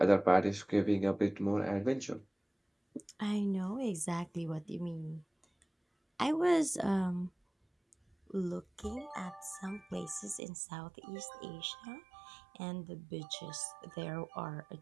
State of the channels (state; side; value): drops out; left; at 10.4 s